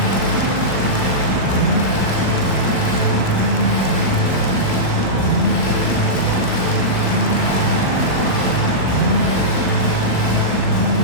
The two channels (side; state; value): right; late; 39 ms